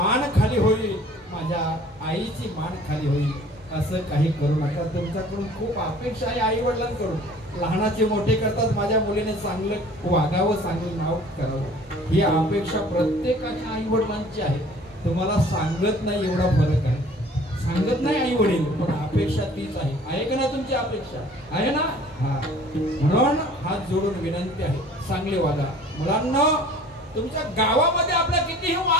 खाली होईल, माझ्या आईची मान खाली होईल, असं काही करू नका। तुमच्याकडून खूप अपेक्षा आहे आई वडिलांकडून, लहानाचे मोठे करतात, माझ्या मुलीने चांगलं वागावं, चांगलं नाव करावं, ही अपेक्षा प्रत्येकाच्या आई वडिलांची आहे। तुम्हाला सांगत नाही एवढा फरक आहे, सांगत नाही आई वडील, पण अपेक्षा तीच आहे का ना, तुमची अपेक्षा आहे ना? म्हणून हात जोडून विनंती आहे, चांगले वागा मुलांना। तुमच्या गावामध्ये आपला कितीही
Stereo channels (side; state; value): both; normal; correlation 0.50